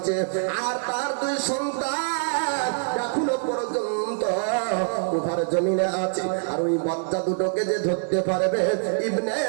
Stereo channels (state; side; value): silent; left; 62 dB below the other